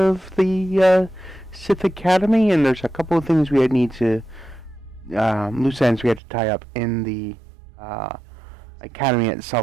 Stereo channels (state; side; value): drops out; left; at 6.2 s